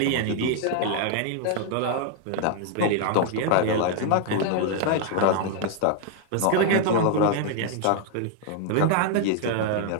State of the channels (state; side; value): different; both; correlation 0.00